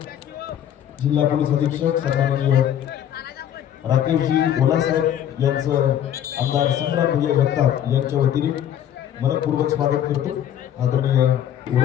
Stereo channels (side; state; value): right; quieter; 10.3 dB